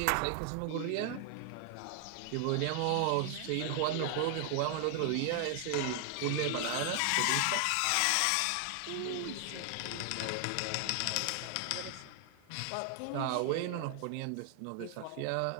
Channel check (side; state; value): both; different; correlation 0.00